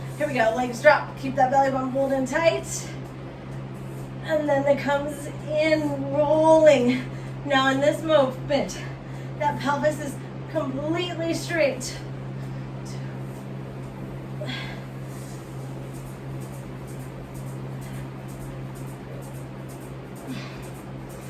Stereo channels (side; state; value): both; identical; correlation 1.00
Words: Here we go, legs drop. Keep that belly button pulled in tight. And then it comes in rolling. Now in this movement, that pelvis is completely straight.